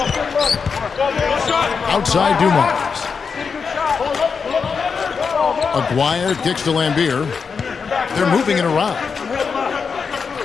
Outside Dumars. Aguirre kicks to Lambier. They're moving it around.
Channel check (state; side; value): quieter; right; 5.6 dB